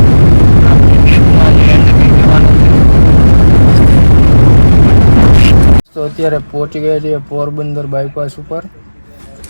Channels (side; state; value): both; inverted; correlation -1.00